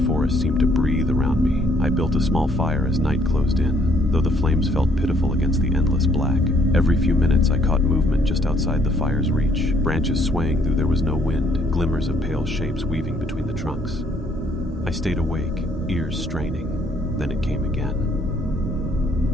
forest seemed to breathe around me. I built a small fire as night closed in, though the flames felt pitiful against the endless black. Every few minutes I caught movement just outside the fire's reach, branches swaying though there was no wind, glimmers of pale shapes weaving between the trunks. I stayed awake, ears straining. Then it came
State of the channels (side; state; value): both; normal; correlation 0.66